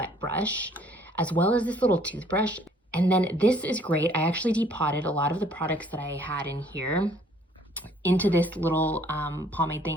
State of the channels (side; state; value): both; normal; correlation 0.60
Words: brush, as well as this little toothbrush. And then this is great. I actually depotted a lot of the products that I had in here into this little pomade